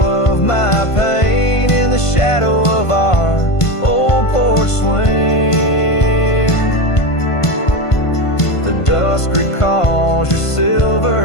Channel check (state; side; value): late; right; 1.5 ms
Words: of my pain in the shadow of our old porch swing. The dusk recalls your silver